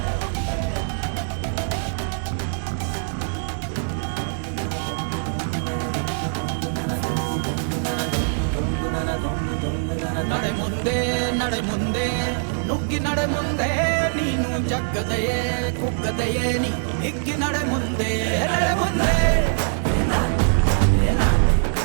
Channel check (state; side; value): silent; left; digital silence